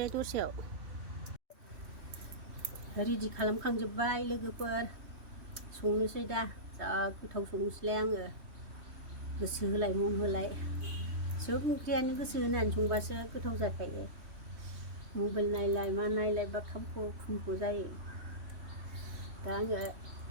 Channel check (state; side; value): late; left; 3.2 ms